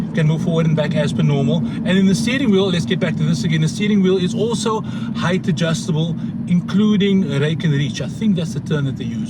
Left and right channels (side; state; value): both; identical; correlation 1.00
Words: Can move forward and back as per normal. And in the steering wheel, let's get back to this again. The steering wheel is also height adjustable, including rake and reach. I think that's the term that they